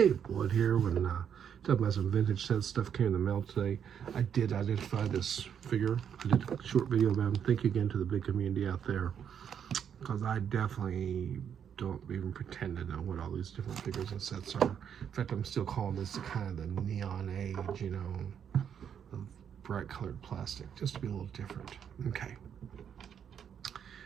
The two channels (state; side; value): quieter; left; 8.3 dB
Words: Wood here. When talking about some vintage set stuff came in the mail today. I did identify this figure. I did a short video about him. Thank you again to the big community out there, because I definitely don't even pretend to know what all these different figures and sets are. In fact, I'm still calling this kind of the neon age, you know, of bright colored plastic, just to be a little different. Okay.